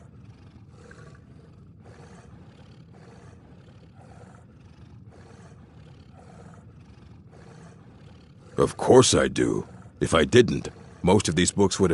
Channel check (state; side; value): identical; both; correlation 1.00